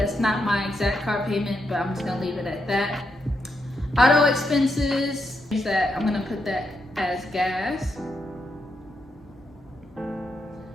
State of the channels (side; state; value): both; normal; correlation 0.82